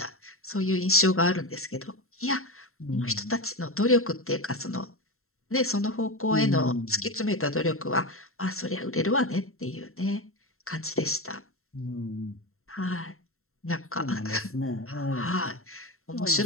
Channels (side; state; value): right; late; 0.62 ms